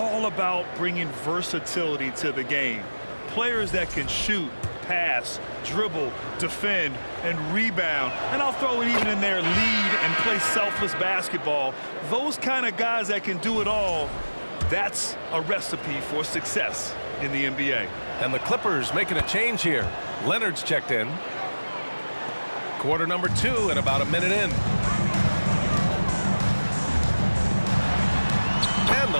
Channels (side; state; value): both; inverted; correlation -1.00